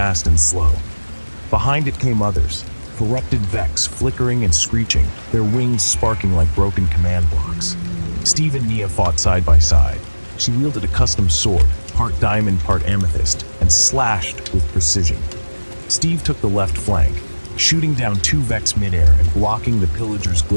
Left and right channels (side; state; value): both; inverted; correlation -1.00